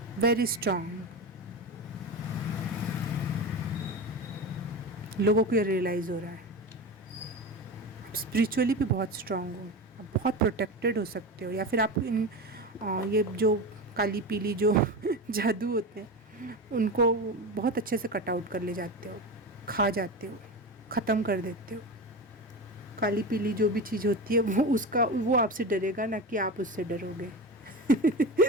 वेरी स्ट्रॉन्ग। लोगों को ये रियलाइज़ हो रहा है, आप स्पिरिचुअली भी बहुत स्ट्रॉन्ग हो, आप बहुत प्रोटेक्टेड हो सकते हो, या फिर आप इन ये जो काली पीली जो जादू होते हैं उनको बहुत अच्छे से कट आउट कर ले जाते हो, खा जाते हो, ख़त्म कर देते हो। काली पीली जो भी चीज़ होती है वो आपसे डरेगा, ना कि आप उससे डरोगे।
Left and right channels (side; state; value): both; normal; correlation 0.24